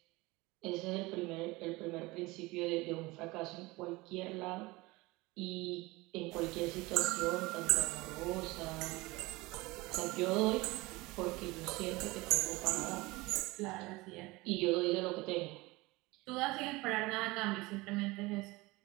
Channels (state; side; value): quieter; left; 22.1 dB